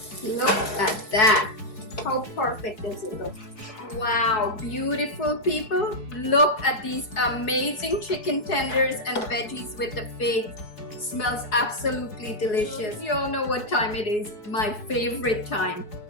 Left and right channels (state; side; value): late; right; 4.7 ms